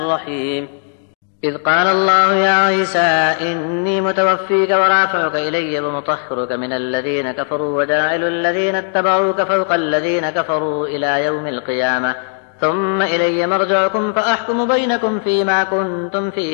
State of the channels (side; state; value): right; silent; digital silence